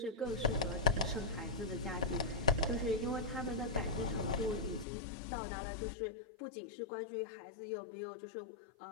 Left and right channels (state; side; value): drops out; right; at 4.9 s